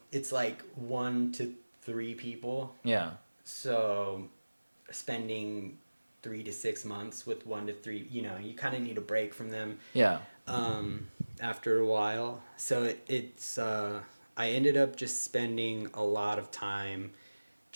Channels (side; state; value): both; inverted; correlation -1.00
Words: it's like 1 to 3 people. Yeah. So spending 3 to 6 months with 1 to 3, you kind of need a break from them. Yeah. After a while, so it's I ended up just spending a lot of time